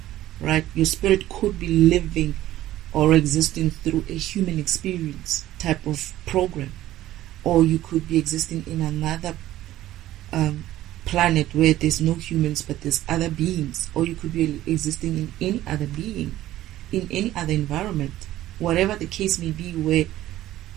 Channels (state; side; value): quieter; left; 14.4 dB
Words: right? Your spirit could be living or existing through a human experience type of program, or you could be existing in another planet where there's no humans but there's other beings, or you could be existing in any other being, in any other environment, whatever the case may be, where